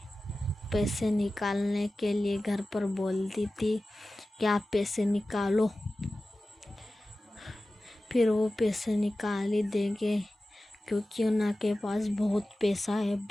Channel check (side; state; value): both; normal; correlation 0.95